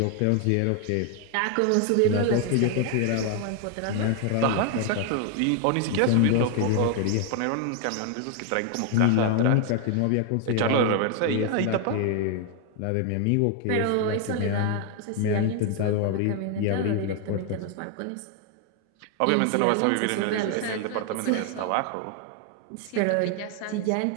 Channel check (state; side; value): different; both; correlation 0.00